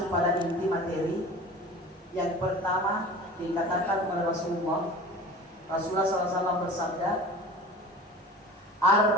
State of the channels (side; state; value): both; normal; correlation 0.39